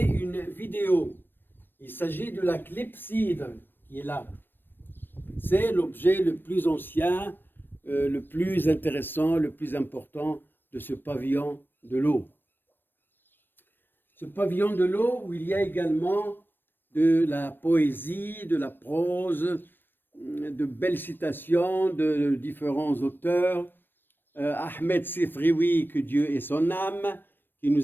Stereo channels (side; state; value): right; late; 0.095 ms